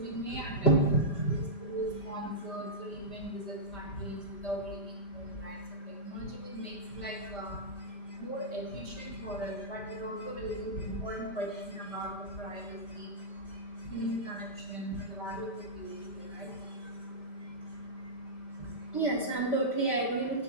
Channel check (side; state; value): right; late; 5.1 ms